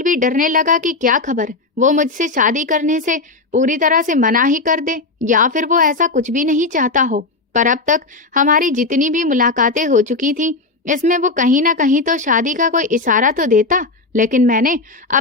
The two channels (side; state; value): right; quieter; 3.5 dB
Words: भी डरने लगा कि क्या खबर वो मुझसे शादी करने से पूरी तरह से मना ही कर दे, या फिर वो ऐसा कुछ भी नहीं चाहता हो। पर अब तक हमारी जितनी भी मुलाकातें हो चुकी थी, इसमें वो कहीं ना कहीं तो शादी का कोई इशारा तो देता। लेकिन मैंने